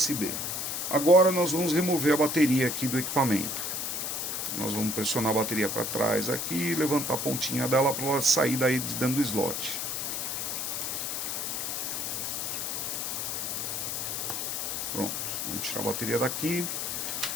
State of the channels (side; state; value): left; noise; hiss, 2 dB below the sound